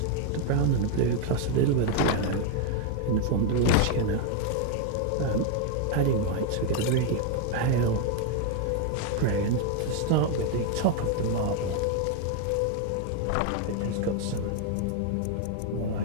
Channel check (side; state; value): both; different; correlation 0.01